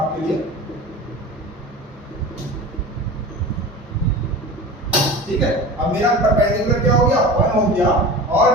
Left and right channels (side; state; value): both; normal; correlation 0.34